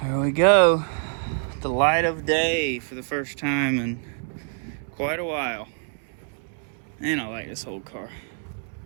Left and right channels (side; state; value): left; silent; 61 dB below the other